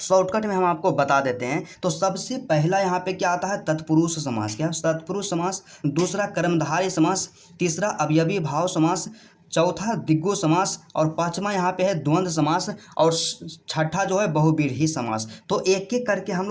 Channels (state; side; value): identical; both; correlation 1.00